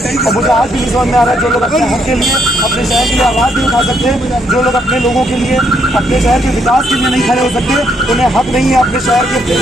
और मुझे आज भी नहीं समझ में आ रहा है जो लोग अपने हक के लिए अपने शहर के लिए आवाज़ नहीं उठा सकते, जो लोग अपने लोगों के लिए अपने शहर के विकास के लिए नहीं खड़े हो सकते, उन्हें हक नहीं है अपने शहर के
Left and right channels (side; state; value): both; normal; correlation 0.73